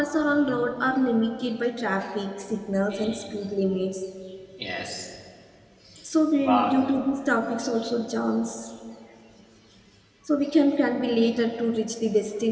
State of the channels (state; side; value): identical; both; correlation 1.00